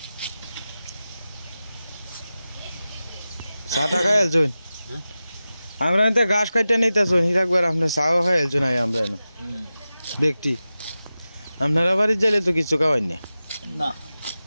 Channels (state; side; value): inverted; both; correlation -0.94